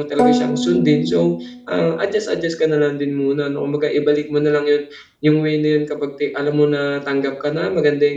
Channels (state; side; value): identical; both; correlation 1.00